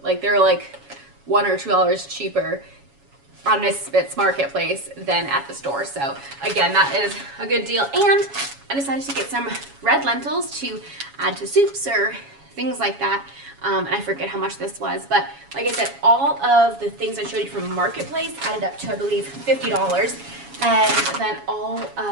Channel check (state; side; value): late; left; 7.2 ms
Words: like they're like $1 or $2 cheaper on Misfits Marketplace than at the store. So again, that is a good deal. And I decided to get some red lentils to add to soups or things like that. And I forget how much this was, but like I said, all of the things I showed you from Marketplace added up to, I believe, $50. And then all